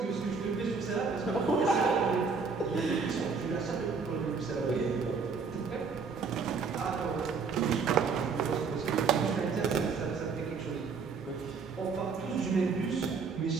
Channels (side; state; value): left; quieter; 5.1 dB